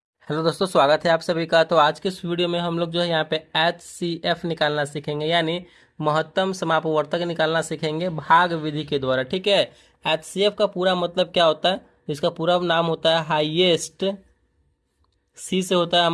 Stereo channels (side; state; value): both; identical; correlation 1.00